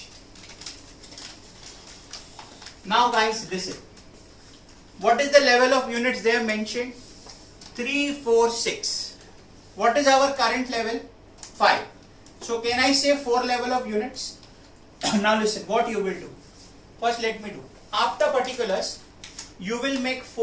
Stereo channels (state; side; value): identical; both; correlation 1.00